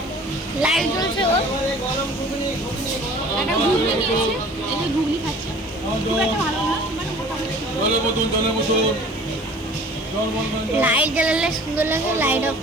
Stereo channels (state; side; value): normal; both; correlation 0.47